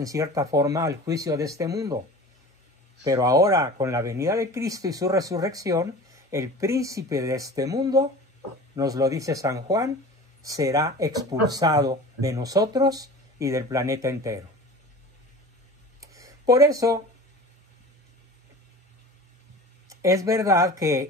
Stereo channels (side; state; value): both; normal; correlation 0.38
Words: cierta forma al juicio de este mundo, pero ahora con la venida de Cristo y su resurrección, el príncipe de este mundo, nos lo dice San Juan, será expulsado de nosotros y del planeta entero. Por eso, es verdad